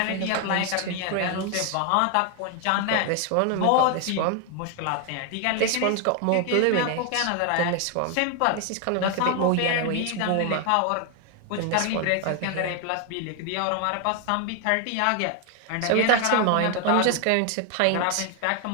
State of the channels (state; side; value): different; both; correlation 0.00